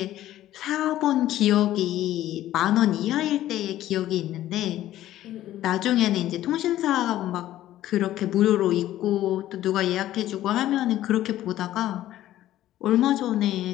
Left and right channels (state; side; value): quieter; right; 13.7 dB